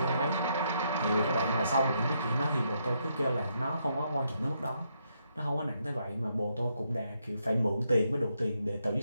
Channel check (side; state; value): both; inverted; correlation -0.77